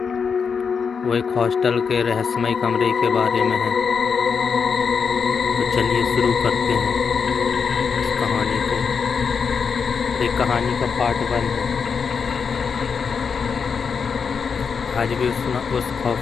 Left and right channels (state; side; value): quieter; right; 6.0 dB